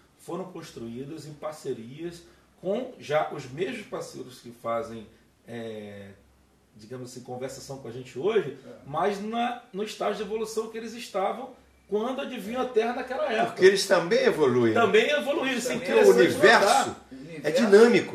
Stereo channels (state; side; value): identical; both; correlation 1.00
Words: foram construídas em parcerias com já os mesmos parceiros que fazem, digamos assim, conversação com a gente hoje, mas no estágio de evolução que eles estavam quando adivinham a Terra naquela época. Porque eles também evoluem. Também evoluíram. Porque o universo é